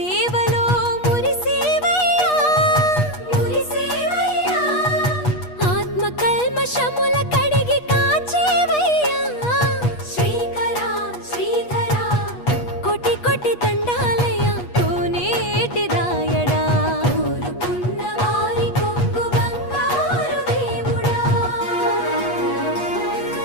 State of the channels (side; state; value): right; late; 8.3 ms